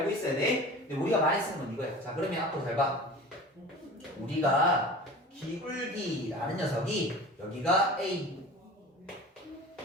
있어야 돼. 근데 우리가 많이 쓰는 건 이거야. 자, 그러면 앞으로 잘 봐. 우리가 기울기라는 녀석이 여기가 A,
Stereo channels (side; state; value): both; normal; correlation 0.38